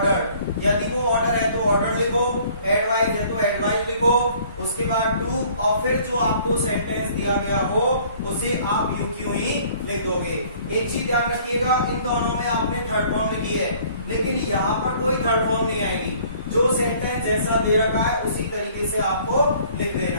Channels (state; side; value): inverted; both; correlation -0.55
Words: यदि वो ऑर्डर है तो ऑर्डर लिखो, एडवाइस है तो एडवाइस लिखो, उसके बाद टू, और फिर जो आपको सेंटेंस दिया गया हो उसे आप यू क्यों ही लिख दोगे। एक चीज ध्यान रखिएगा, इन दोनों में आपने थर्ड फॉर्म लिखी है, लेकिन यहाँ पर कोई थर्ड फॉर्म नहीं आएगी। जो सेंटेंस जैसा दे रखा है उसी तरीके से आपको लिख